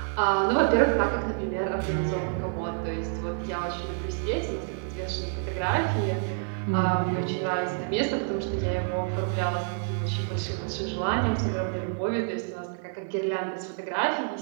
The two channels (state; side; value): silent; left; 59 dB below the other